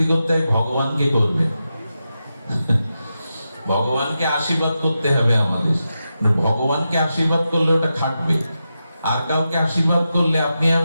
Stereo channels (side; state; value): both; inverted; correlation -0.89